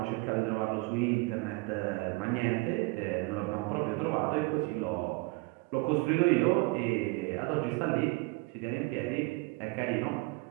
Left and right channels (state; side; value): quieter; left; 24.8 dB